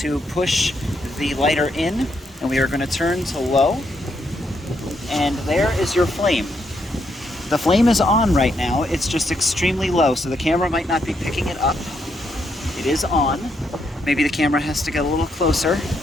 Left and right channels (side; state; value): both; normal; correlation 0.77